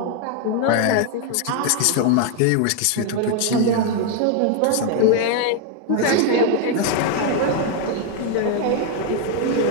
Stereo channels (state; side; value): different; both; correlation 0.01